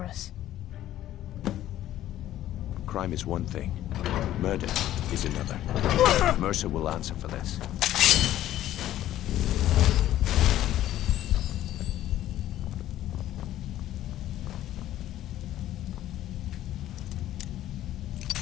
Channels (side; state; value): right; quieter; 13.1 dB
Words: us. Crime is one thing. Murder is another. Mercer will answer for this.